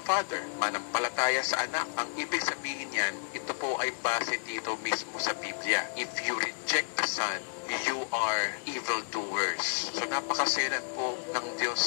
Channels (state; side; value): silent; right; digital silence